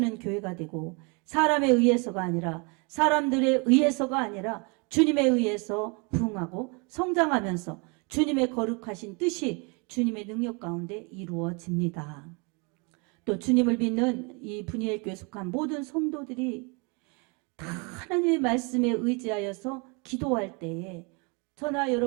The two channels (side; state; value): left; quieter; 31.6 dB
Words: 교회가 되고 사람에 의해서가 아니라 사람들에 의해서가 아니라 주님에 의해서 부흥하고 성장하면서 주님의 거룩하신 뜻이 주님의 능력 가운데 이루어집니다. 또 주님을 믿는 이 분이엘교에 속한 모든 성도들이 다 하나님의 말씀에 의지하여서 기도할 때에 저나